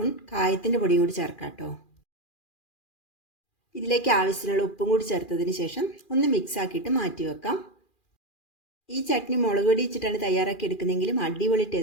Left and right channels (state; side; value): late; right; 2.4 ms